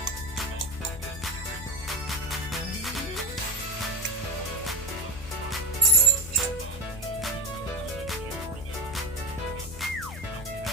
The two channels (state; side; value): noise; left; hum, 15 dB below the sound